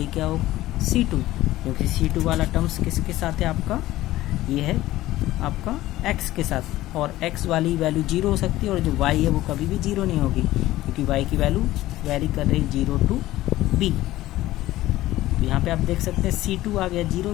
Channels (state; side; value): quieter; right; 15.9 dB